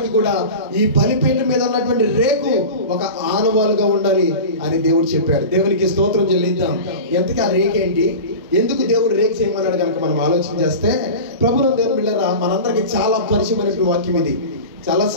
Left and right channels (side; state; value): both; inverted; correlation -0.31